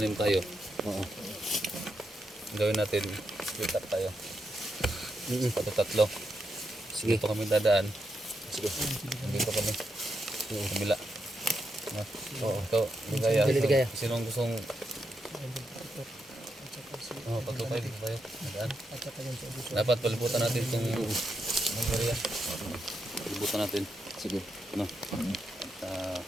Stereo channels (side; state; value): both; normal; correlation 0.83